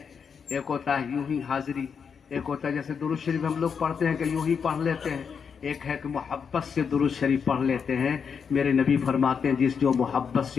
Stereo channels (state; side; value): quieter; right; 6.5 dB